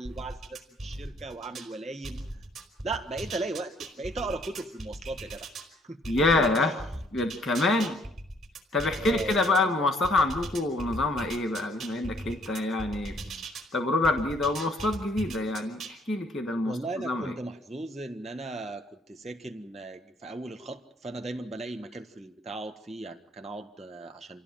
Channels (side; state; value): both; normal; correlation 0.64